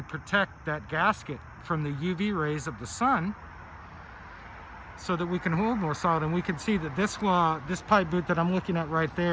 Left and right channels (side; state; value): both; identical; correlation 1.00